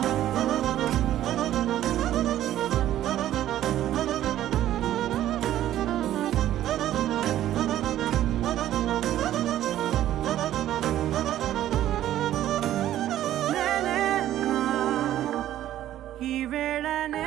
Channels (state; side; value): quieter; left; 12.7 dB